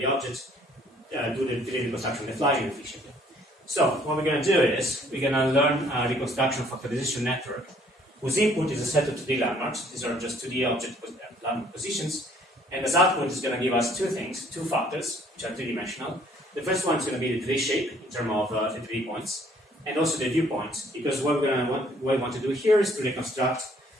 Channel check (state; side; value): normal; both; correlation 0.61